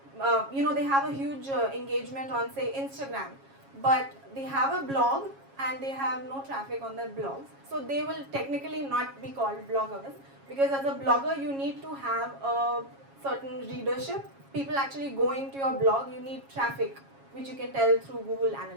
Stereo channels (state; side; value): late; left; 7.3 ms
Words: they have a huge engagement on, say, Instagram, but they have a blog and they have no traffic on their blogs. So they will technically not be called bloggers because as a blogger, you need to have a certain readership. People actually going to your blog, you need traffic, which you can tell through Google